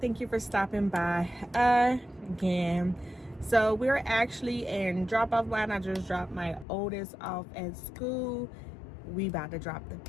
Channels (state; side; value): drops out; right; at 6.7 s